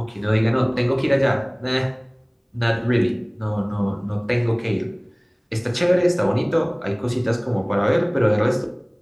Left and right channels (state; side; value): identical; both; correlation 1.00